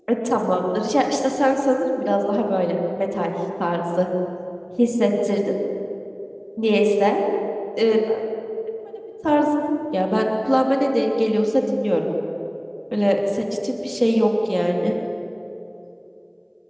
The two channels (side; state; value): both; identical; correlation 1.00